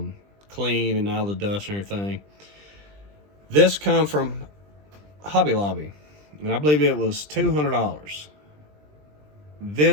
clean and out of the dust and everything. This come from Hobby Lobby, and I believe it was $200.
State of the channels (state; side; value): late; left; 20 ms